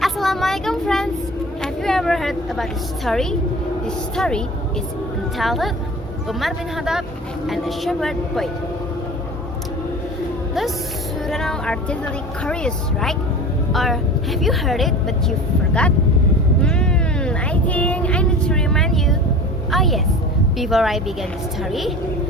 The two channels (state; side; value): normal; both; correlation 0.37